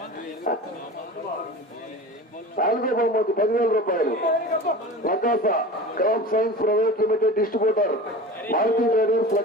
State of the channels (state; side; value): normal; both; correlation 0.34